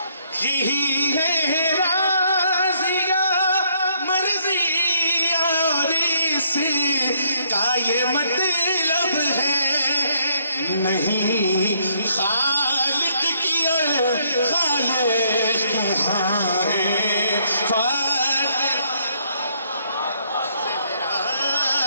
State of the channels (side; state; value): both; inverted; correlation -0.69